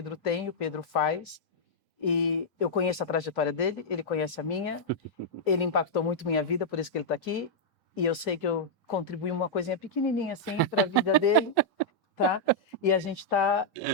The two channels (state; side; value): normal; both; correlation -0.06